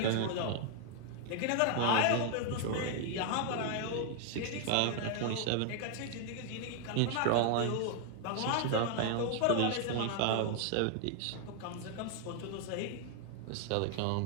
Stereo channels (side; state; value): both; different; correlation 0.00